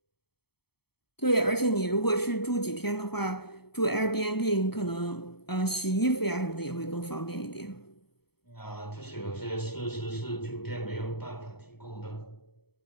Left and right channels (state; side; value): late; right; 0.96 ms